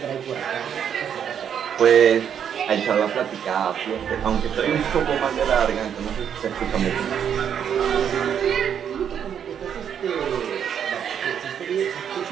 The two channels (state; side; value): quieter; left; 8.5 dB